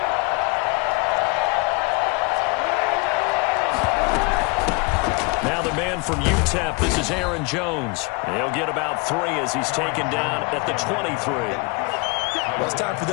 From UTEP, this is Aaron Jones. He'll get about 3 as he's taken down at the 23. Well, it's time for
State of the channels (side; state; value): right; quieter; 27.6 dB